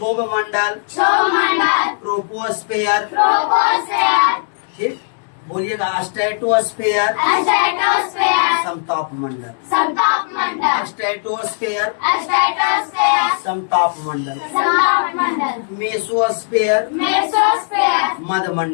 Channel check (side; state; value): right; silent; digital silence